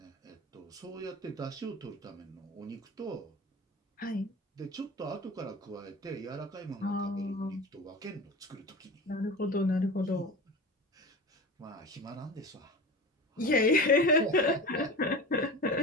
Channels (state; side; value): normal; both; correlation 0.32